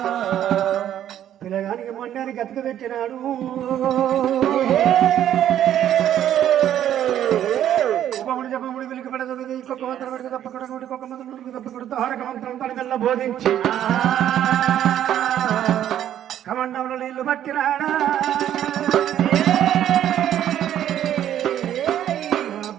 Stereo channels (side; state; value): left; quieter; 11.0 dB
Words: పిల్లగానికి మొండానికి గతక పెట్టినాడు. ఉపముడు జపముడు వెలికి పడదు ఇంకొక మంత్రం పెడితే తప్పకుండా ఇంకొక మంత్రం తప్పకుండా తారక మంత్రం తనకల్లా బోధించి కమండంలో నీళ్లు పట్టినాడా.